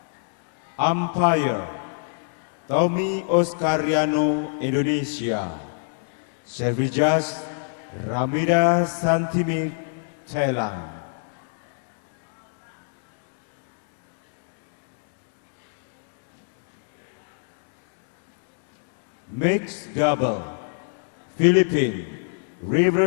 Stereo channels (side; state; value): right; silent; digital silence